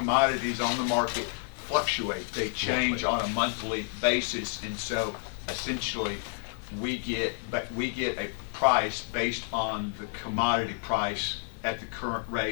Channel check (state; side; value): silent; right; 58 dB below the other